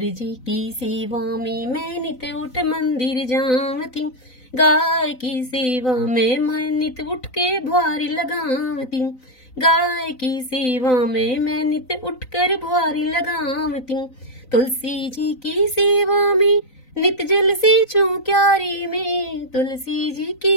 की सेवा में मैं नित उठ मंदिर जावती। गाय की सेवा में मैं नित उठ के भुआरी लगावती, गाय की सेवा में मैं नित उठकर भुआरी लगावती। तुलसी जी की सेवा में नित जल सींचूं क्यारी में, तुलसी जी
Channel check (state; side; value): late; right; 3.9 ms